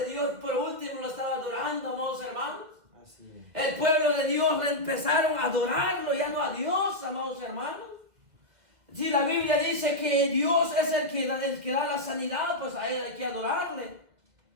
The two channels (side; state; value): left; late; 2.0 ms